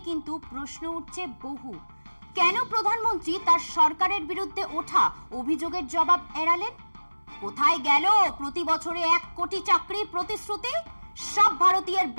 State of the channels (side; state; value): both; inverted; correlation -1.00